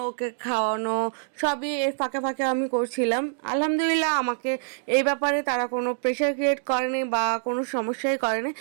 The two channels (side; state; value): left; silent; digital silence